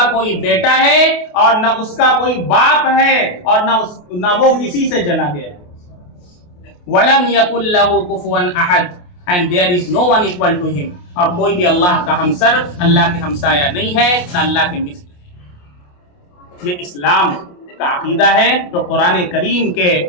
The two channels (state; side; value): late; right; 28 ms